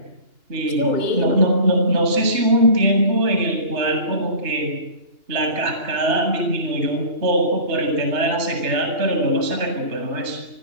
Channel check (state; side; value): late; left; 2.8 ms